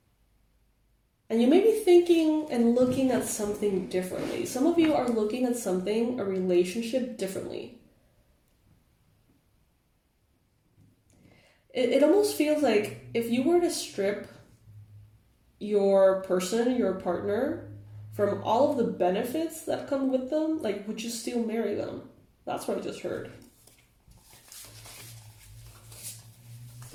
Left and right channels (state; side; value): identical; both; correlation 1.00